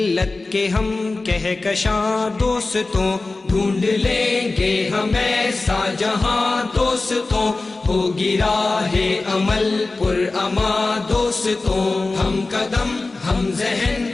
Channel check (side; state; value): right; quieter; 3.4 dB